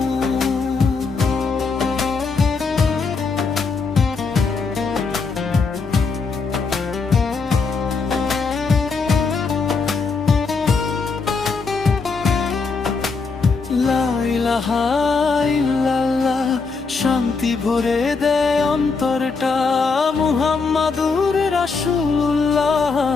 লা ইলাহা ইল্লাল্লাহ, শান্তি ভরে দেয় অন্তরটা। মুহাম্মাদুর রাসূলুল্লাহ,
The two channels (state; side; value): quieter; right; 4.6 dB